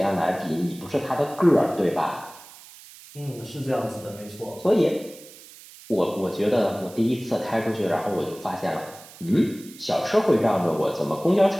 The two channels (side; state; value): right; noise; hiss, 20 dB below the sound